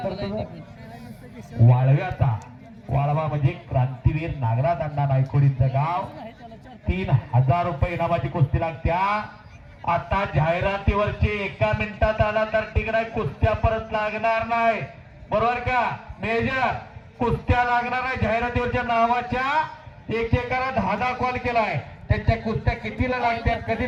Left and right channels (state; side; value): identical; both; correlation 1.00